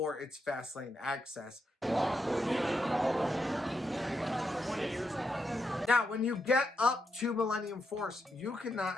its Fastlane access. Now, when you get up to Millennium Force, you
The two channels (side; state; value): both; normal; correlation 0.82